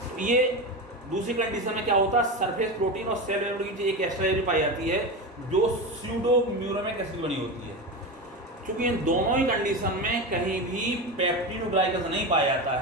ये दूसरी कंडीशन में क्या होता है, सरफेस प्रोटीन और सेल मेम्ब्रेन की एक एक्स्ट्रा एरिया पाई जाती है जो स्यूडोम्यूरेमिक एसिड बनी होती है। क्योंकि इन दोनों ही कंडीशन में कहीं भी पेप्टिडोग्लाइकन्स नहीं पाया जाता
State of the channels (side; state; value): both; normal; correlation 0.21